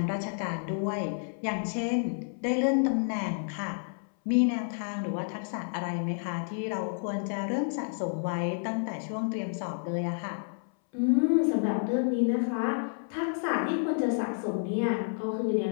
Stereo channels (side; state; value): right; silent; 58 dB below the other